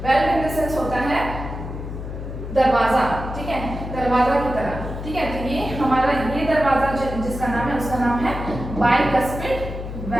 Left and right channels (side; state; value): left; noise; hum, 8 dB below the sound